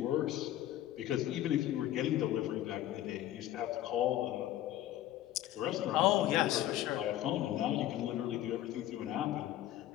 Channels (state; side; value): quieter; right; 13.3 dB